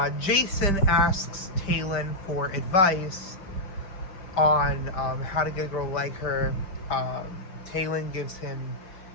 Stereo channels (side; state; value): right; late; 5.0 ms